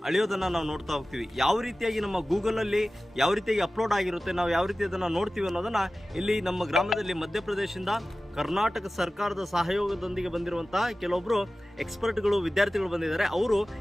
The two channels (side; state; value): both; normal; correlation 0.96